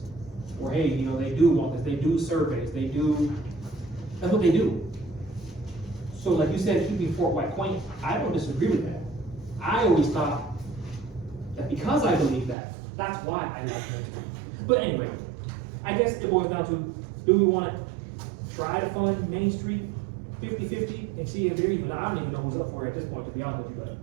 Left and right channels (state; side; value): drops out; left; at 12.6 s